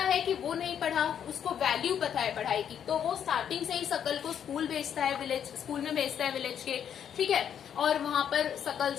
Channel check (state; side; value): quieter; right; 8.8 dB